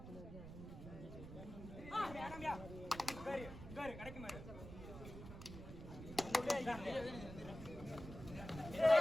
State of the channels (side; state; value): right; noise; rumble, 11 dB below the sound